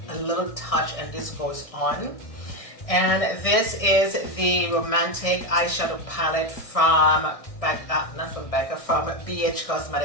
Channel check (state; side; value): late; right; 1.6 ms